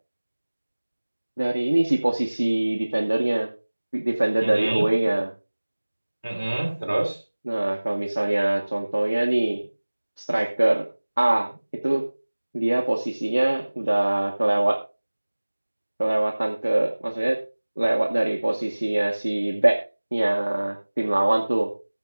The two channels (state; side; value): inverted; both; correlation -1.00